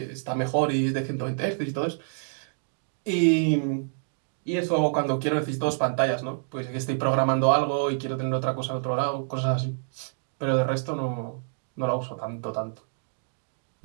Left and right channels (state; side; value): silent; left; digital silence